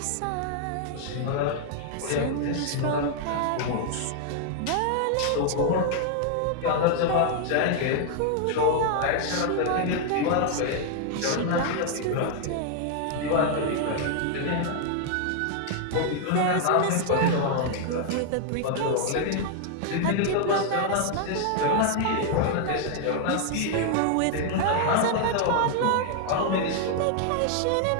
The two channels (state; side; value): different; both; correlation 0.00